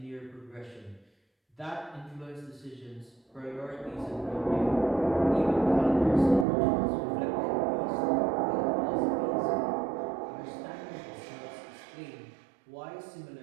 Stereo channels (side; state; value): left; drops out; at 6.5 s